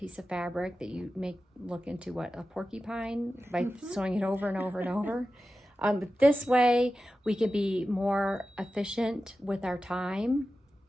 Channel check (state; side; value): normal; both; correlation 0.93